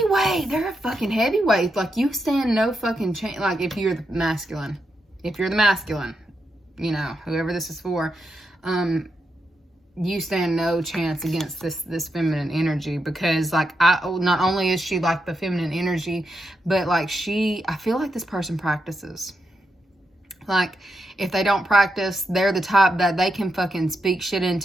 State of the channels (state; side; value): normal; both; correlation 0.84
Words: They're a fucking heavyweight. Like, you stand no fucking chance. Like, if you're the masculine, you know, whoever this is for, you stand no chance against this feminine energy, because like, not only is she like the feminine energy, but like I feel like this person practices. Like, if they don't practice, they're the type that they can fucking speak shit